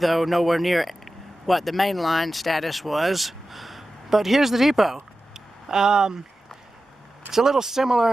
nowhere near what the main line status was. But here's the depot. It's a little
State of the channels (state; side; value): normal; both; correlation 0.93